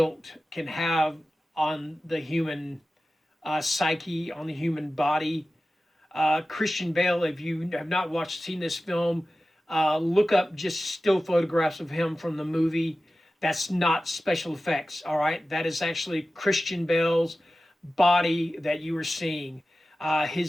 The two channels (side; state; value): both; normal; correlation 0.95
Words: can have on the human psyche, on the human body. Christian Bale, if you have not seen this film, look up just still photographs of him from the movie. That's not special effects, all right? That is actually Christian Bale's body that you are seeing.